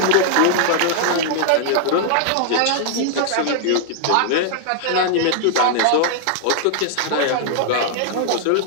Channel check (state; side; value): different; both; correlation -0.01